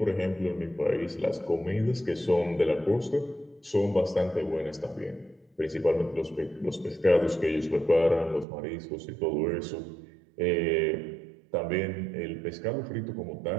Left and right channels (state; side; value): drops out; left; at 8.5 s